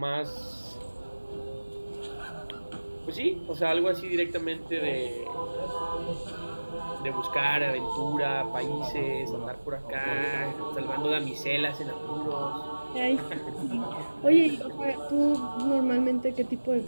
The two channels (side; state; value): both; inverted; correlation -1.00